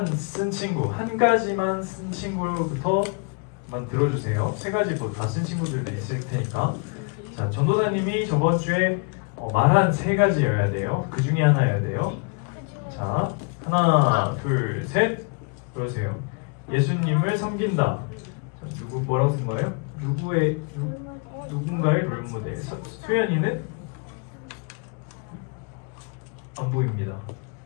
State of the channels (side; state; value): right; quieter; 34.9 dB